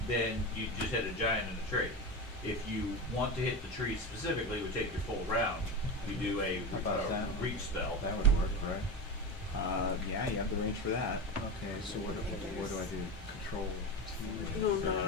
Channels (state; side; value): normal; both; correlation 0.21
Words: then you just hit a giant and a tree. If you want to hit the tree specifically, it would take your full round. You do a How about that? reach spell. That would work, right? yeah, you have the range for that. Okay, so what do I do? Control T? No,